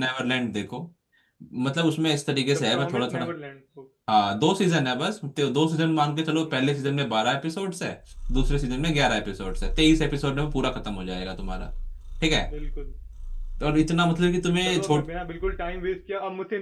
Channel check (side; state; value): both; identical; correlation 1.00